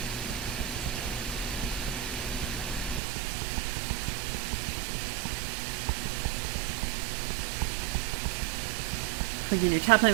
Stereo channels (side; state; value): left; drops out; at 3.0 s